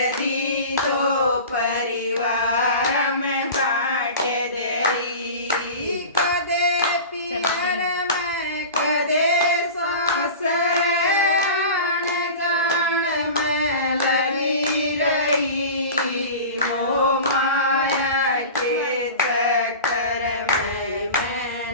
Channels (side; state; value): both; inverted; correlation -0.34